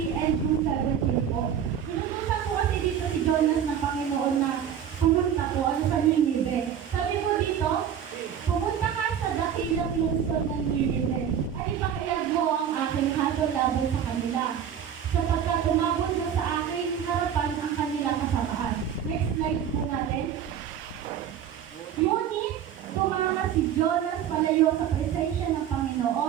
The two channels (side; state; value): left; quieter; 8.9 dB